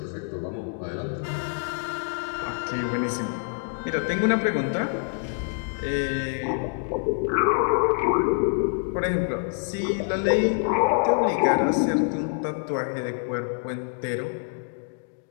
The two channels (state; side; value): silent; right; digital silence